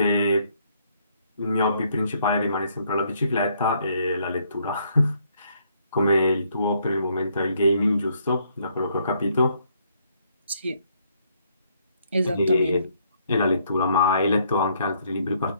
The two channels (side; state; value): both; inverted; correlation -0.69